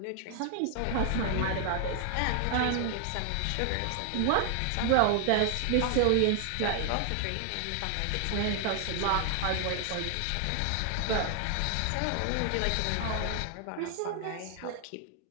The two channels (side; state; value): both; different; correlation 0.00